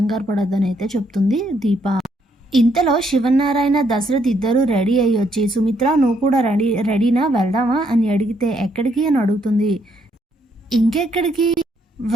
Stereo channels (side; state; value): both; normal; correlation 0.72